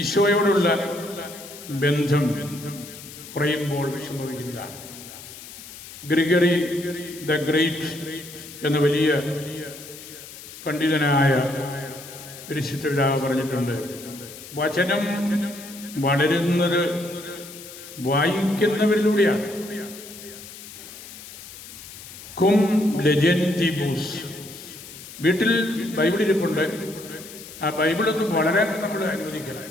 ഈശോയോടുള്ള ബന്ധം കുറയുമ്പോൾ വിഷമിക്കുന്നതാണ്. ഗ്രിഗറി ദ ഗ്രേറ്റ് എന്ന വലിയ പണ്ഡിതനായ പരിശുദ്ധ പിതാവ് പറഞ്ഞിട്ടുണ്ട്, വചനം വളരുന്നത് വായിക്കുന്നവരിലൂടെയാണ്. കും ലെജൻറ്റിബൂസ്. വീട്ടിൽ ബൈബിൾ ഇരിപ്പുണ്ട്, ആ ബൈബിളൊന്ന് വളരാൻ നമ്മൾ അനുവദിക്കണം.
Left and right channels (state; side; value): noise; left; hiss, 15 dB below the sound